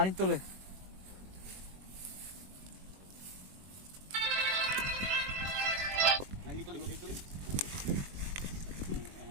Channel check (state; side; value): late; left; 21 ms